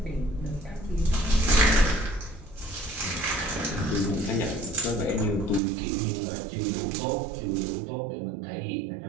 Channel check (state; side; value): drops out; left; at 5.6 s